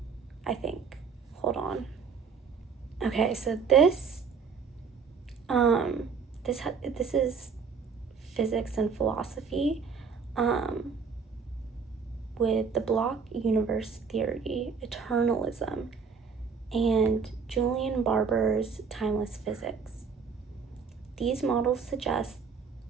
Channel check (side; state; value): left; quieter; 5.6 dB